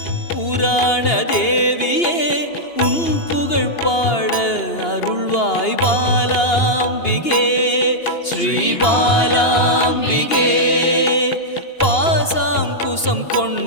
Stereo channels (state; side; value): late; right; 2.8 ms